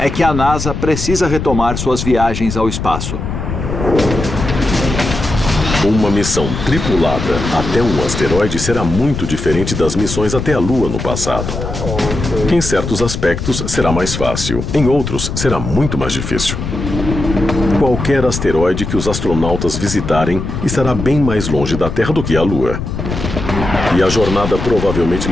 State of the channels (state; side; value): noise; left; rumble, 5 dB below the sound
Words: que a NASA precisa retomar suas viagens ao espaço. Uma missão tripulada até um asteroide será muito diferente das missões até a Lua no passado. Em certos aspectos, será mais fácil. Em outros, será muito mais difícil. Qualquer asteroide que os astronautas visitarem estará bem mais longe da Terra do que a Lua. E a jornada provavelmente